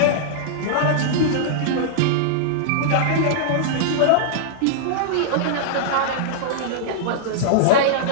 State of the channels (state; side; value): different; both; correlation -0.02